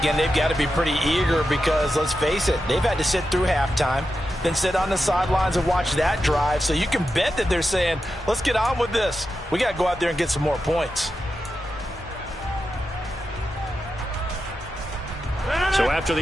They've got to be pretty eager because, let's face it, they've had to sit through halftime, then sit on the sidelines and watch that drive. So you can bet that they're saying, let's get on with this. We got to go out there and get some more points. So after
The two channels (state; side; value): normal; both; correlation 0.89